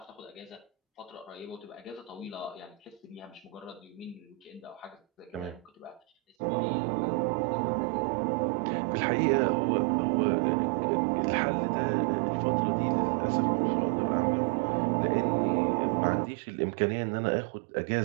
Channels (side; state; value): left; drops out; at 6.4 s